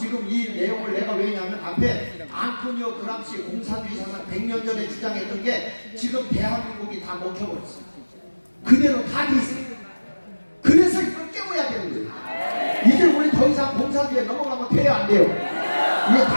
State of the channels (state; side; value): inverted; both; correlation -1.00